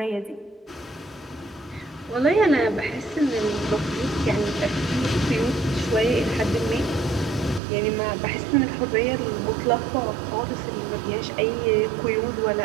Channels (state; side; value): drops out; left; at 7.6 s